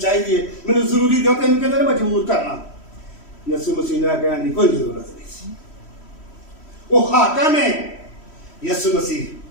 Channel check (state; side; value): late; right; 3.1 ms